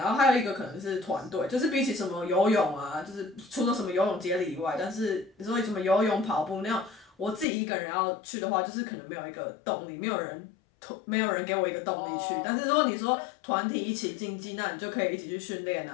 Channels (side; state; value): right; drops out; at 7.5 s